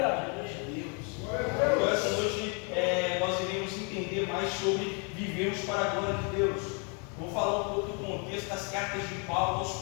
de Deus. Então, essa noite nós iremos entender mais sobre vivermos para a glória de Deus. Vou falar um pouco do contexto das cartas de Paulo aos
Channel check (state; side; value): quieter; right; 36.2 dB